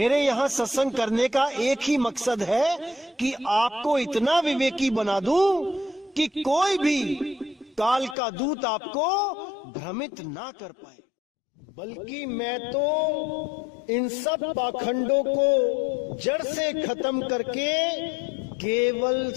यहां सत्संग करने का एक ही मकसद है कि आपको इतना विवेकी बना दूं कि कोई भी काल का दूत आपको भ्रमित ना कर पाए। बल्कि मैं तो इन सब पाखंडों को जड़ से खत्म करके केवल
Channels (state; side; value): drops out; right; at 8.2 s